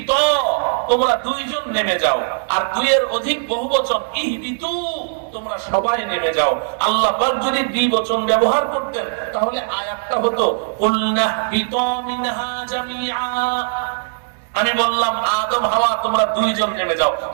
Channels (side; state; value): left; silent; digital silence